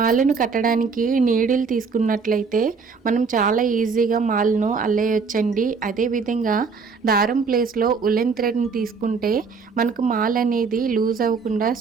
కట్టడానికి నీడిల్ తీసుకున్నట్లయితే మనం చాలా ఈజీగా మాలను అల్లేయొచ్చండి. అదేవిధంగా దారం ప్లేస్లో ఉలెన్ థ్రెడ్ని తీసుకుంటే మనకు మాల అనేది లూజ్ అవ్వకుండా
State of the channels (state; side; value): quieter; left; 5.1 dB